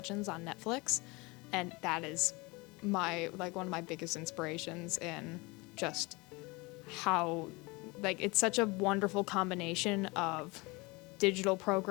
on Netflix, and that is one of my biggest inspirations in just how it's such a wonderful combination of digital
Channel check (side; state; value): right; quieter; 25.1 dB